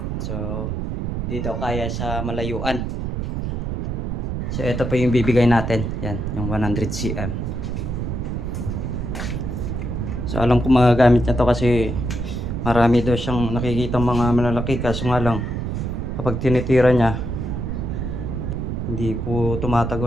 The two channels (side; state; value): right; noise; rumble, 2 dB below the sound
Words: So hindi daw kaya sa malayuan. So ito po yung bibigay natin. Yan, yung 100 cm. So alam ko magagamit niya to kasi marami daw siyang nakikita mga malalaki, kaso nga lang kapag tinitira niya hindi po